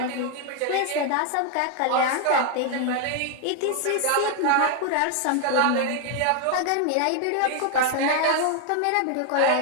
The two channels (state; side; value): different; both; correlation 0.00